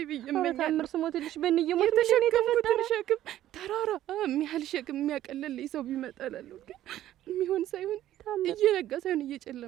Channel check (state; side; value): quieter; left; 13.0 dB